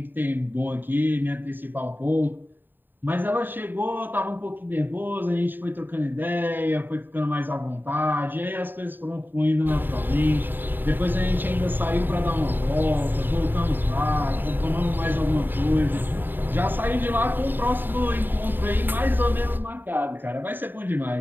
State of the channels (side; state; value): left; late; 0.093 ms